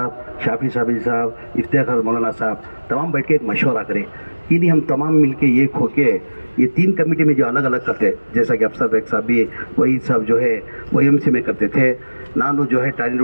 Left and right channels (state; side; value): inverted; both; correlation -1.00